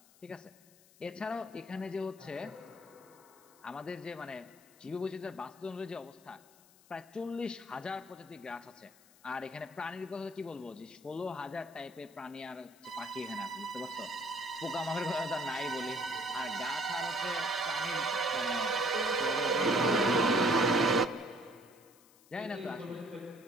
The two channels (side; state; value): left; noise; hiss, 26 dB below the sound